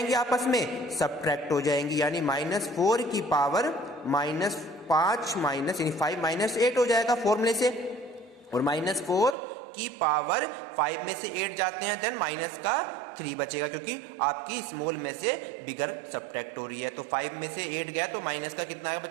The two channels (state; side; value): drops out; left; at 9.3 s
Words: आपस में सब्ट्रैक्ट हो जाएंगी, यानी -4 की पावर -5 यानी 5 -8 हो जाएगा फॉर्मूले से। और -4 की पावर 5 में से 8 जाते हैं, देन माइनस का 3 बचेगा, क्योंकि आपकी स्मॉल में से बिगर सब्ट्रैक्ट हो रही है। तो 5 में से 8 गया तो माइनस का कितना है